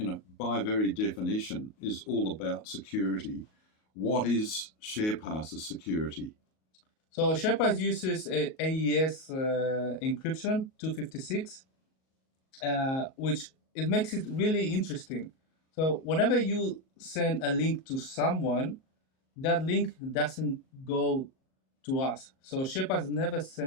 by very definition, is all about security. What is SharePass's security? So SharePass uses AES encryption 256, which it makes it really interesting. So whenever you send a link to someone, that link doesn't go to us. So SharePass never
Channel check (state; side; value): late; right; 38 ms